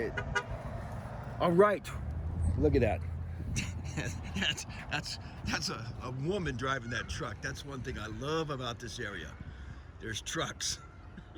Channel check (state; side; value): identical; both; correlation 1.00